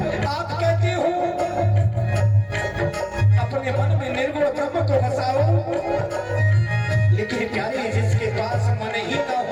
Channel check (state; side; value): identical; both; correlation 1.00